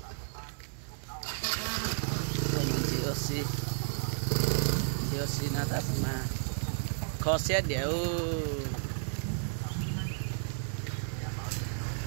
mình chỉ ở xí nó ta mà khó xét đều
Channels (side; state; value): left; silent; 56 dB below the other